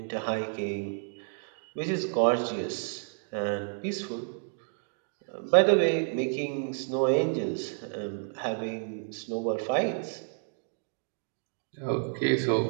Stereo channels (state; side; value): silent; left; 58 dB below the other